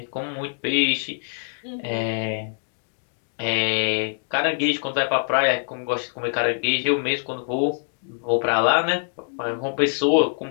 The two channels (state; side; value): silent; right; digital silence